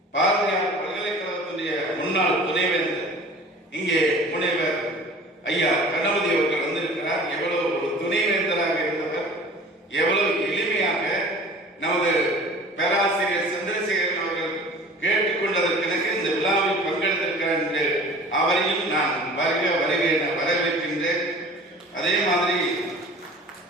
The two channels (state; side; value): normal; both; correlation 0.44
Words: பாரதியார் பல்கலைக்கழகத்துடைய முன்னாள் துணைவேந்தர் இங்கே முனைவர் ஐயா கணபதி அவர்கள் வந்திருக்கிறார். எவ்வளவு ஒரு துணைவேந்தராக இருந்தவர், எவ்வளவு எளிமையாக நமது பேராசிரியர் சந்திரசேகரன் அவர்கள் கேட்டுக்கொண்டதற்கு இந்த விழாவில் பங்கெடுத்திருக்கிறார் என்று அவரையும் நான் வருக வருக என வரவேற்கின்றேன். அதே மாதிரி